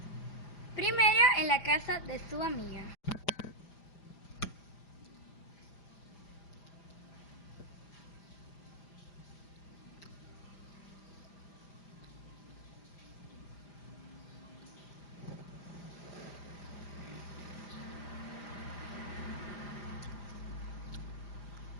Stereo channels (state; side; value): late; right; 5.0 ms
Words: Primero en la casa de su amiga.